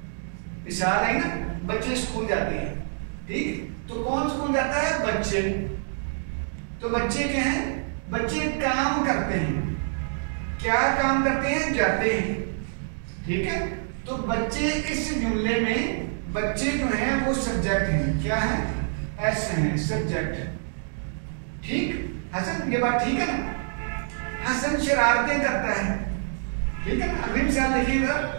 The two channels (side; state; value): left; silent; digital silence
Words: मिसाल है ना, बच्चे स्कूल जाते हैं। ठीक, तो कौन स्कूल जाता है? बच्चे। तो बच्चे क्या हैं? बच्चे काम करते हैं। क्या काम करते हैं? जाते हैं। ठीक है, तो बच्चे इस जुमले में बच्चे जो हैं वो सब्जेक्ट हैं। क्या है? एस हैं, सब्जेक्ट। ठीक, हसन, ये बात ठीक है ना? हसन शरारतें करता है। ठीक है ना? अगली मिसाल देखिएगा।